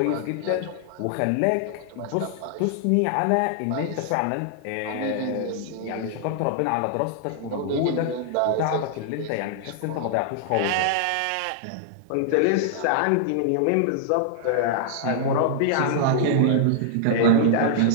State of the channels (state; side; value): different; both; correlation -0.01